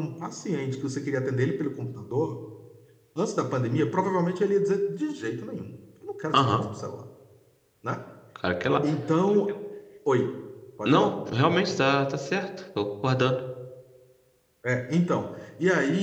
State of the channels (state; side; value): identical; both; correlation 1.00